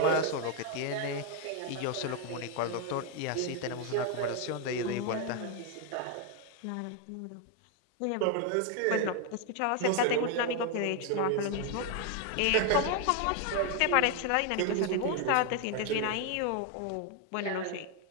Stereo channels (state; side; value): different; both; correlation 0.01